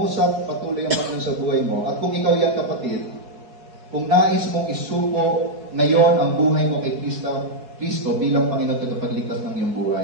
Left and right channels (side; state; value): left; late; 4.7 ms